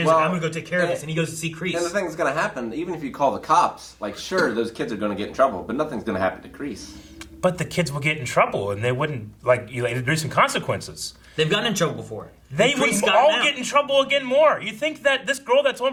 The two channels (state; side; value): identical; both; correlation 1.00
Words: like, I'm going to go take care of this. And he goes to see Kreese. And the thing that's going to happen, even if you call the cops, like, sure, those kids are going to get in trouble, but nothing's going to happen to Kreese. But the kids will get in trouble, and they wouldn't, like, there's some consequences. They've gotten in trouble before. They And would Kreese got all out. get in trouble again more. You think that this girl that's on